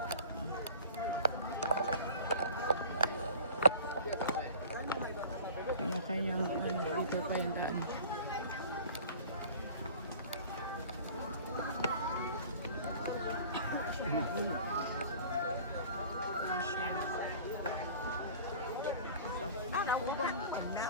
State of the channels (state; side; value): inverted; both; correlation -0.43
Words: Kanya-kanyang ano, dito pa yung daan. Ubang na